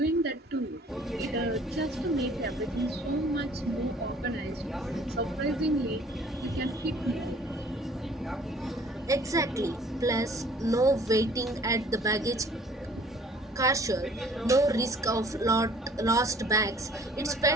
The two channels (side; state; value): both; normal; correlation 0.54